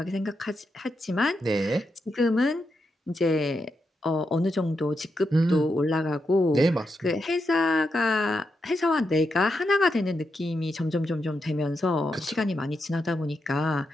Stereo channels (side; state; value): both; normal; correlation 0.85